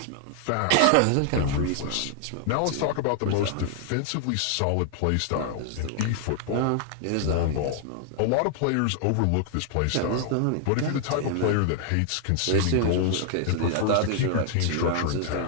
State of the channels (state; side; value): different; both; correlation 0.00